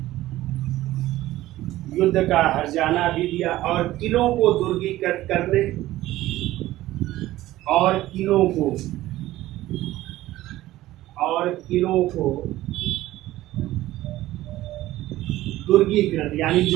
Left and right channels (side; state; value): left; quieter; 15.8 dB